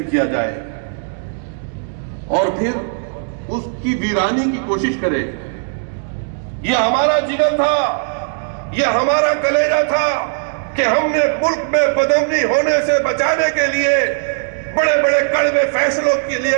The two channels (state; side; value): silent; left; digital silence